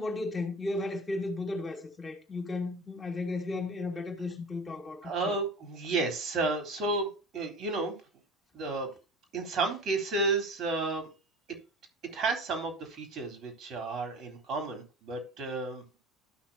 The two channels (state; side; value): normal; both; correlation 0.37